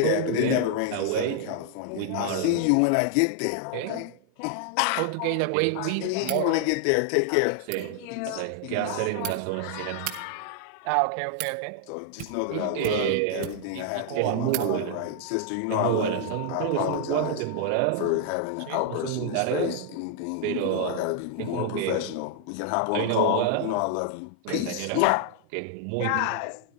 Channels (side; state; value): both; different; correlation 0.00